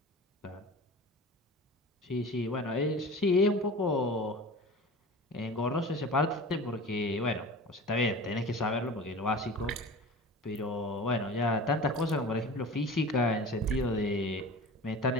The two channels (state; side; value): normal; both; correlation 0.37